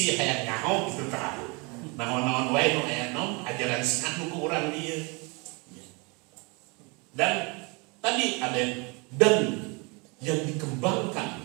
hayang nyaho gitu tak. Naon-naon wae nu aya naon ajaran Syiah nu ku urang dia. Dan tadi ada dan yang dikembangkan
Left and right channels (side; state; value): left; quieter; 29.7 dB